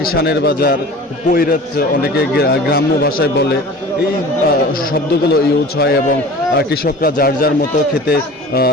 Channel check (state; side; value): normal; both; correlation 0.40